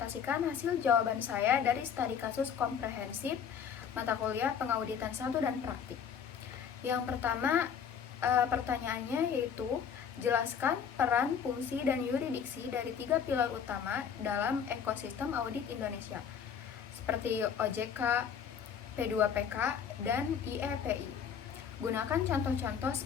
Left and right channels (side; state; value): right; quieter; 7.6 dB